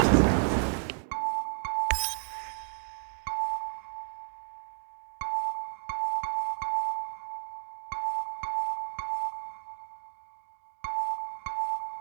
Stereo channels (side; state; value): left; silent; digital silence